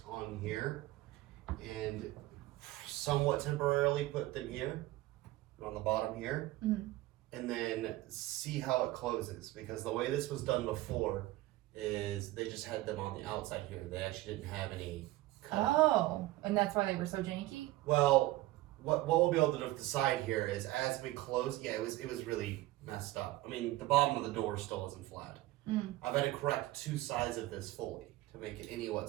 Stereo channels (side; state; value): left; quieter; 17.5 dB